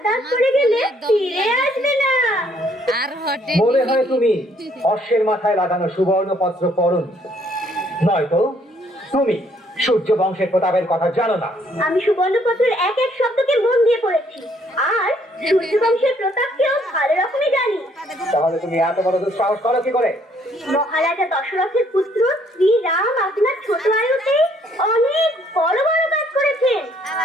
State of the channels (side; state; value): both; normal; correlation 0.66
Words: দাঁত পড়ে গেলে ফিরে আসবে না আর হটে মনে হয় তুমি অশ্বের মাথায় লাগানো সুবর্ণ পত্র পড়নি, নয়তো তুমি সূর্য বংশের প্রতাপের কথা জানো না। আমি সুবর্ণপত্রের এক এক শব্দকে মন দিয়ে পড়েছি আর সূর্যবংশের প্রতাপকেও ভালো রকমই জানি তাহলে তুমি এত বড় দুঃসাহস করো কি করে? মহারাজা দশরথের পুত্র শ্রী রাম আপনার ছোট আয়ুতে অনেক বড় বড় কাজ করেছেন